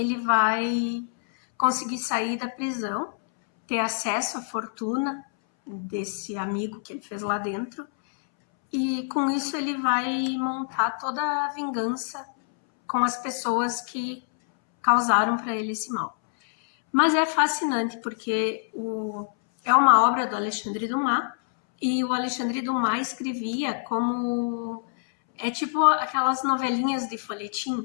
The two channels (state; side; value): silent; right; 61 dB below the other